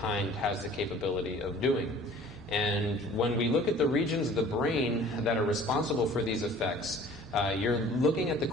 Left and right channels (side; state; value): both; normal; correlation 0.49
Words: has the capability of doing. And when we look at the regions of the brain that are responsible for these effects, you're looking at the